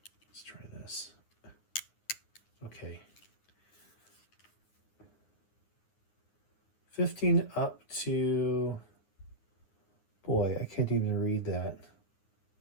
Let's try this. Okay. 15 up to, boy, I can't even read that.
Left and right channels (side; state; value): right; late; 9.7 ms